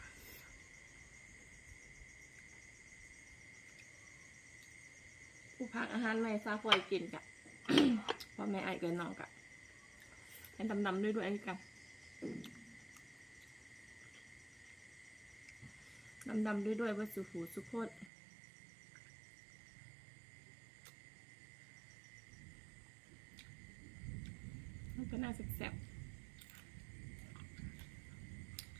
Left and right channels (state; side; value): drops out; left; at 18.1 s